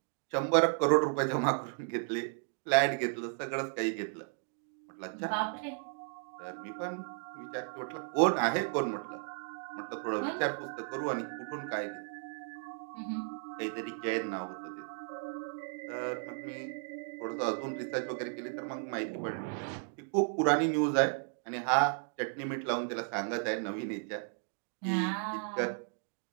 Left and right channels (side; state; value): left; silent; 55 dB below the other